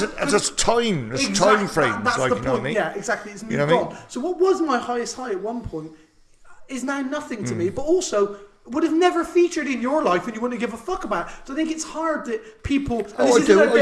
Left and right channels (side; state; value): both; identical; correlation 1.00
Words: a time, there's time frame. That's like, the you point. Know what I mean? Yeah, exactly. It's moved you know what I mean? on. So what was my highest high at one point is now nothing to me. But also would have never featured in your life and you wouldn't give a fuck about. So I think it's hard that people. And this isn't a